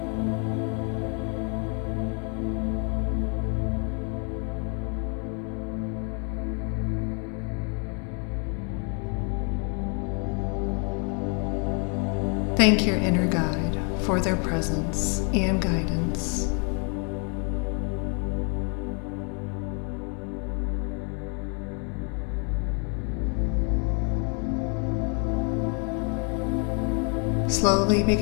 Thank your inner guide for their presence and guidance. Slowly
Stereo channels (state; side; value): quieter; right; 38.0 dB